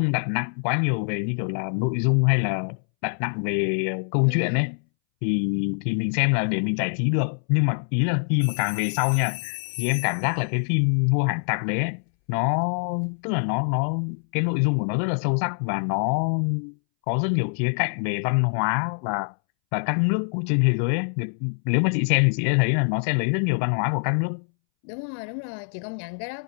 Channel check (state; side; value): silent; right; 62 dB below the other